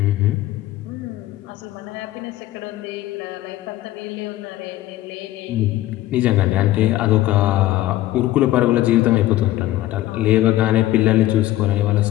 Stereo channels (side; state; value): right; quieter; 15.1 dB